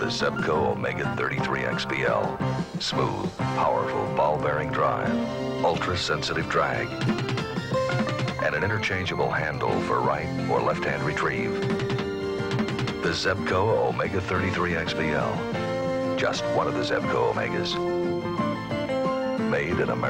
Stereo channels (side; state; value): both; identical; correlation 1.00